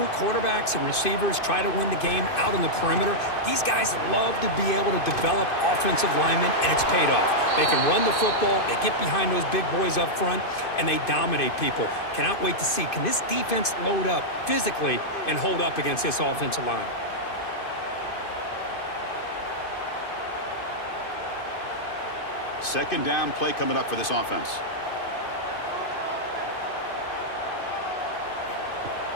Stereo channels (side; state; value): right; late; 2.5 ms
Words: quarterbacks and receivers, try to win the game out on the perimeter. These guys love to be able to develop offensive linemen, and it's paid off. They can run the football, they get behind those big boys up front, and they dominate people. Cannot wait to see, can this defense load up physically and hold up against this offensive line? Second down play coming up for this offense.